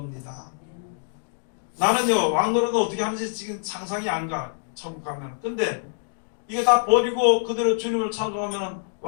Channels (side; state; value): right; silent; digital silence